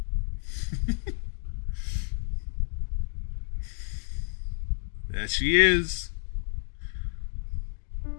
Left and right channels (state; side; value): silent; right; 58 dB below the other